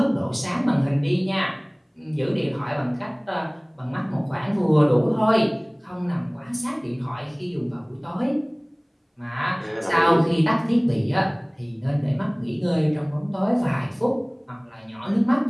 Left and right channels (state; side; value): identical; both; correlation 1.00